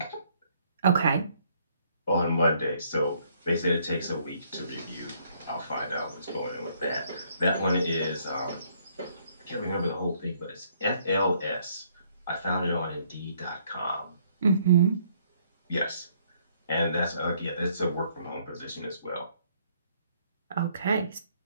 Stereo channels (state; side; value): inverted; both; correlation -0.67